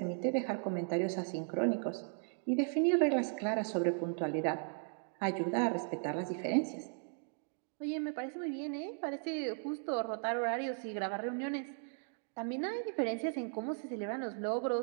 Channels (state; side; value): silent; left; 53 dB below the other